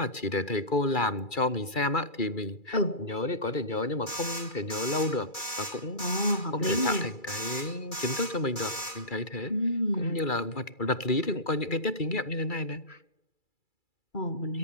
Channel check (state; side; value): late; right; 2.3 ms